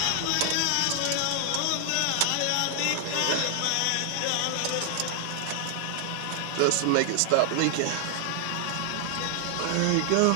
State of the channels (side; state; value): both; different; correlation 0.00